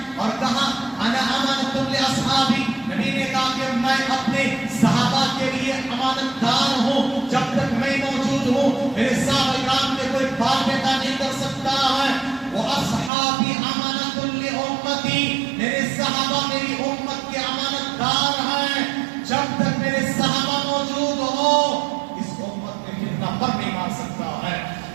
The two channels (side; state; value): left; drops out; at 13.1 s